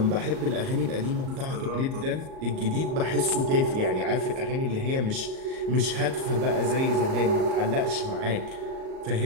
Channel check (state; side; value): late; left; 38 ms